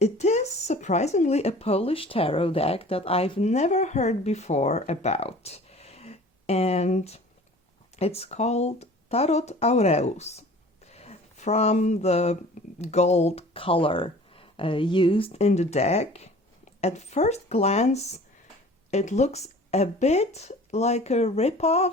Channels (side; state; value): both; normal; correlation 0.46